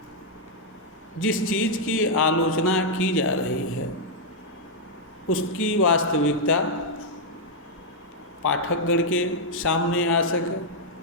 जिस चीज़ की आलोचना की जा रही है उसकी वास्तविकता पाठकगण के सामने आ सके।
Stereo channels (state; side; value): normal; both; correlation -0.04